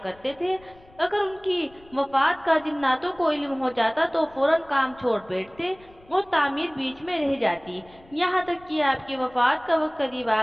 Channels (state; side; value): noise; left; rumble, 26 dB below the sound